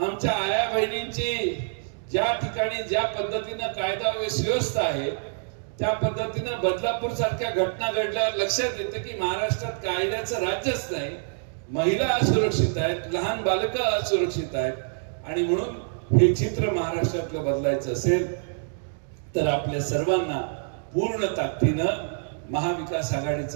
आया बहिणींची ज्या ठिकाणी ज्या पद्धतीनं कायदा व सुव्यवस्था आहे त्या पद्धतीनं बदलापूर सारख्या घटना घडल्यावर लक्षात येते की महाराष्ट्रात कायद्याचं राज्यच नाही. महिला असुरक्षित आहेत, लहान बालकं असुरक्षित आहेत आणि म्हणून हे चित्र महाराष्ट्रातलं बदलायचं असेल तर आपल्या सर्वांना पूर्ण ताकदीनं महाविकास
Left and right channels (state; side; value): silent; left; digital silence